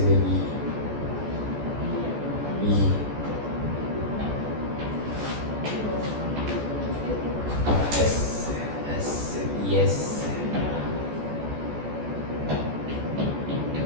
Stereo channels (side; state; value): left; late; 14 ms